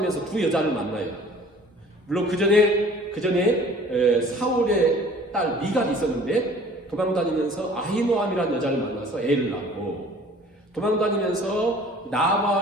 두 여자를 만나요. 물론 그 전에 사울의 딸 미갈이 있었는데 도망다니면서 아히노암이라는 여자를 만나서 애를 낳고 도망다니면서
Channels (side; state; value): both; normal; correlation 0.49